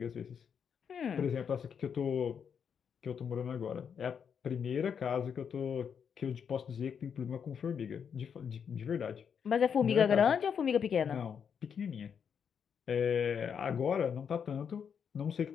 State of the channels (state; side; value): quieter; right; 7.2 dB